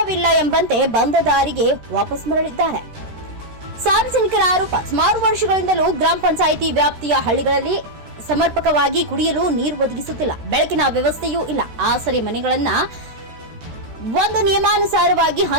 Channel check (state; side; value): late; left; 13 ms